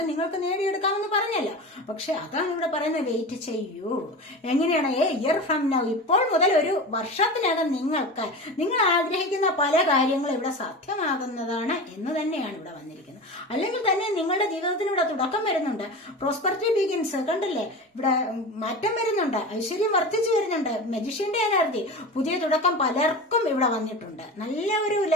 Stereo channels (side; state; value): both; normal; correlation 0.29